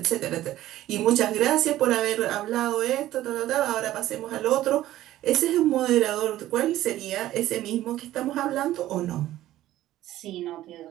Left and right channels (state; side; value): quieter; left; 14.3 dB